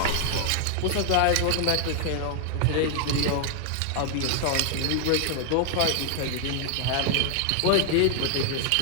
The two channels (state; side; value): different; both; correlation 0.00